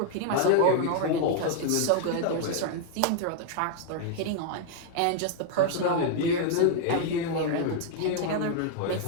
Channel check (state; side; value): different; both; correlation 0.00